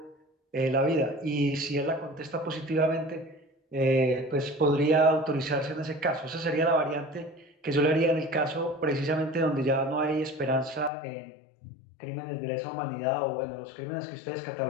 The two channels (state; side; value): drops out; right; at 10.9 s